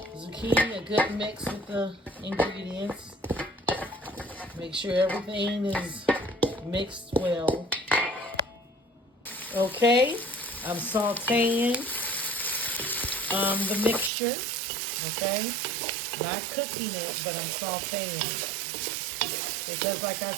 a good mix with the ingredients. Make sure everything is mixed well. Okay, I'm sauteing the mixture, okay? Not cooking it, but I'm sauteing. Because like I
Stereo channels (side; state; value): left; drops out; at 14.1 s